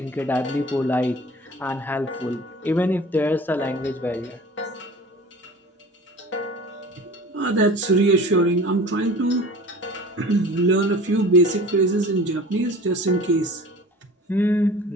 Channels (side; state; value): both; normal; correlation 0.41